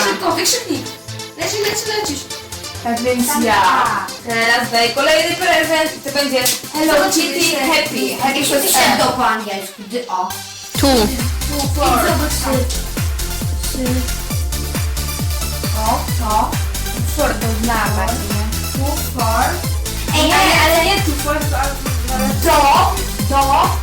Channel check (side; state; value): both; identical; correlation 1.00